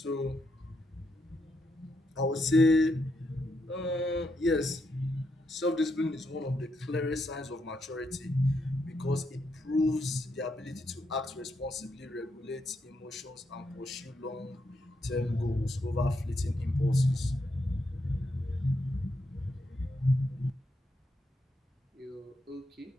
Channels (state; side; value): normal; both; correlation 0.80